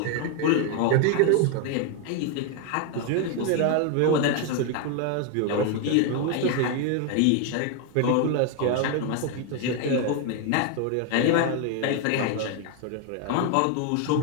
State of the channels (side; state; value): both; different; correlation 0.01